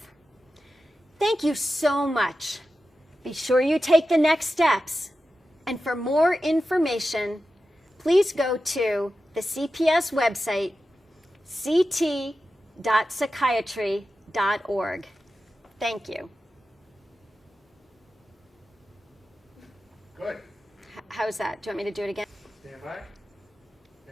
Thank you so much. Be sure you take the next steps. And for more information, please go to the CPS website, ct.psychiatry.org. Thank you. Good. How's that? Do you want me to do it again? Stand by.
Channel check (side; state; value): both; normal; correlation 0.92